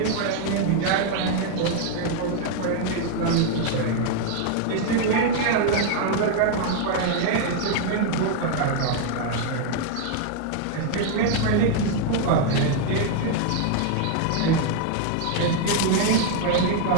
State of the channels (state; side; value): different; both; correlation 0.00